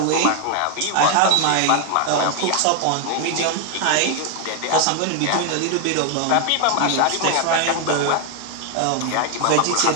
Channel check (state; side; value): different; both; correlation 0.01